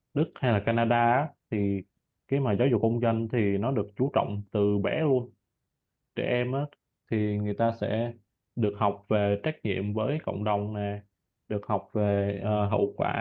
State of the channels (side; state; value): both; identical; correlation 1.00